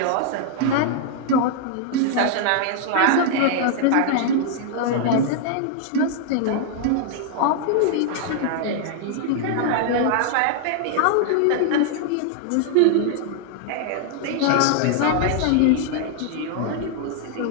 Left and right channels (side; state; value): both; different; correlation 0.00